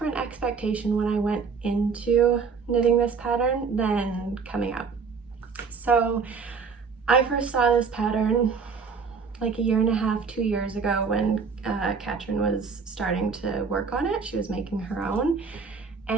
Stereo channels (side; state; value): left; quieter; 5.4 dB